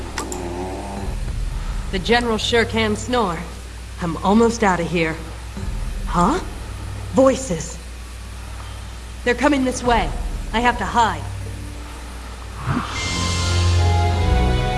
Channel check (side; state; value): both; identical; correlation 1.00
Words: The General sure can snore. I'm almost out of here. Huh? Voices. They're coming this way. I have to hide.